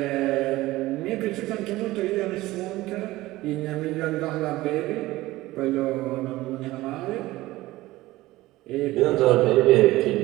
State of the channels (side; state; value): left; quieter; 17.9 dB